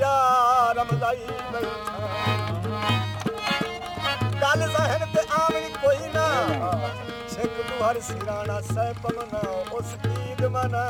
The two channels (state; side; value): identical; both; correlation 1.00